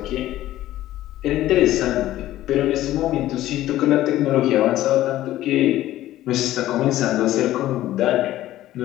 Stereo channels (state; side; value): quieter; right; 14.4 dB